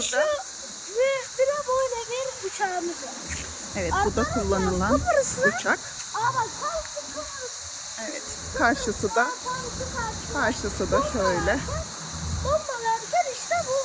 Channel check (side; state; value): both; identical; correlation 1.00